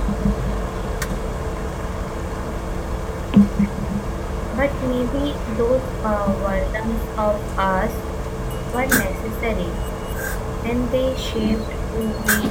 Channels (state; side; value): identical; both; correlation 1.00